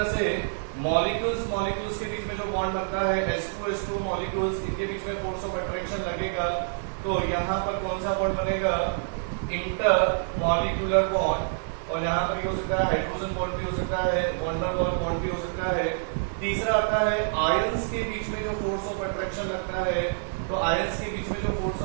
से मॉलिक्यूल्स के बीच में जो बॉन्ड बनता है H2 मॉलिक्यूल्स, इनके बीच में फोर्स ऑफ अट्रैक्शन लगेगा, तो यहाँ पर कौन सा बॉन्ड बनेगा, इंटर मॉलिक्यूलर बॉन्ड। और यहाँ पर हो सकता है हाइड्रोजन बॉन्ड भी हो सकता है, वंडरवॉल बॉन्ड भी हो सकता है। तीसरा आता है आयंस के बीच में जो फोर्स ऑफ अट्रैक्शन लगता है, तो आयंस के बीच में जो फोर्स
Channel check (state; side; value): silent; left; 59 dB below the other